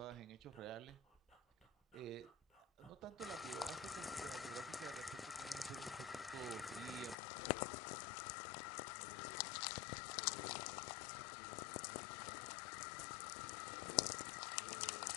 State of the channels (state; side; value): drops out; right; at 7.2 s